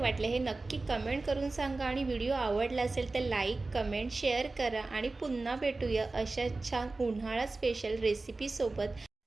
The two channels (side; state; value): left; quieter; 3.4 dB